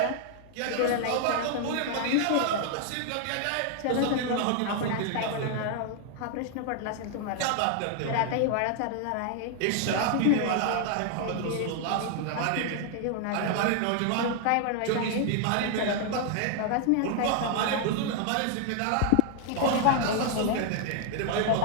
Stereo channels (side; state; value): both; different; correlation 0.00